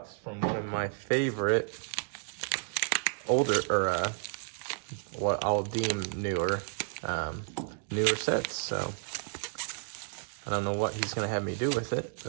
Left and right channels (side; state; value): left; silent; digital silence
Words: from one of my favorite older, or what I'll deem newer sets. So I don't know what he's gonna have me do with it,